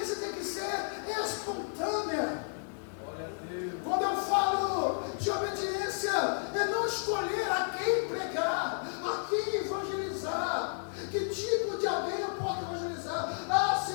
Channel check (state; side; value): silent; right; 56 dB below the other